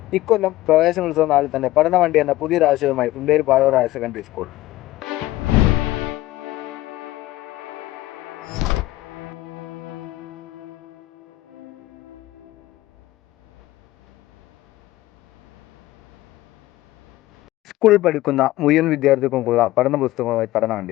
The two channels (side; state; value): right; quieter; 16.5 dB